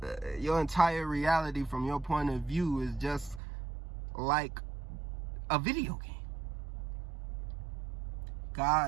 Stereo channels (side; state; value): left; drops out; at 3.4 s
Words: entire reality from your point of view is just like a video game.